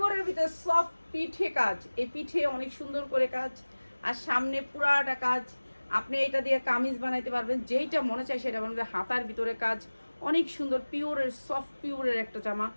ভিতরে সফট পিঠে কাজ। এই পিঠে অনেক সুন্দর করে কাজ, আর সামনে পুরাটা কাজ। আপনি এটা দিয়ে কামিজ বানাইতে পারবেন, যেইটা মনে চায় সেটা বানাবে। হাতার ভিতরে কাজ অনেক সুন্দর, পিওরের সফট পিওরের একটা জামা,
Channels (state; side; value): inverted; both; correlation -1.00